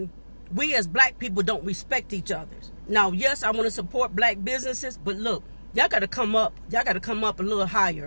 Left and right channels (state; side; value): inverted; both; correlation -1.00